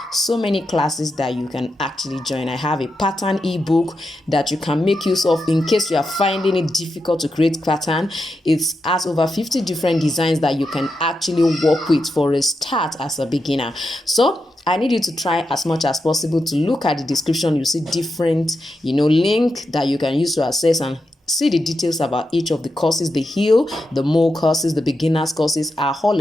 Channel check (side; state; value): both; normal; correlation 0.87